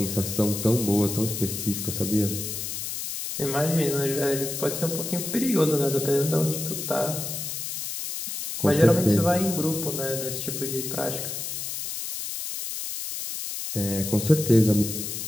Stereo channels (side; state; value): left; noise; hiss, 5 dB below the sound